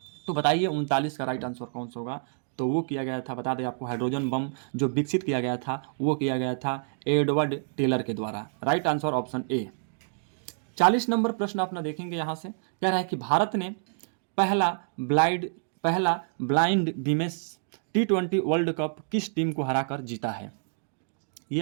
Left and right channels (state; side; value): silent; left; digital silence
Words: तो बताइए 39 का राइट आंसर कौन सा होगा? तो वो किया गया था, बता दें आपको, हाइड्रोजन बम जो विकसित किया गया था वो किया गया था एडवर्ड टेलर के द्वारा। Right answer option A. 40 number प्रश्न अपना देखेंगे यहाँ से, कह रहा है कि भारत ने पहला blind women's T20 world cup किस टीम को हराकर जीता है? ये